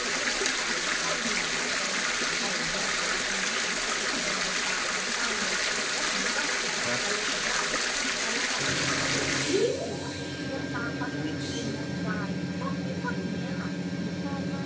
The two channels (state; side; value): identical; both; correlation 1.00